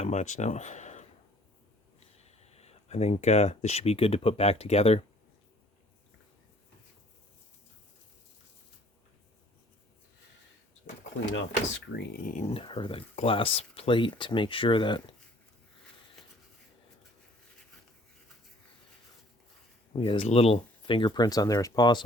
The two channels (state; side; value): normal; both; correlation 0.56